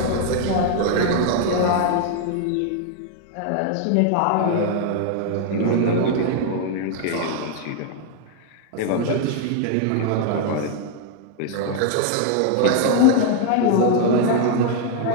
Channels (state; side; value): different; both; correlation 0.00